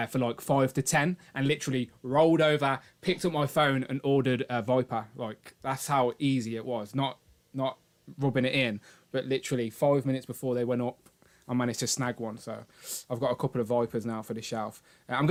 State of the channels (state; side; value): identical; both; correlation 1.00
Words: like 5 to 10 and literally rolled over, picked up my phone and ordered a Viper. Like, that's how easy it was. Not rubbing it in, but literally 5 minutes before they went up, I managed to snag one. So I've got a couple of Vipers now for the shelf. I'm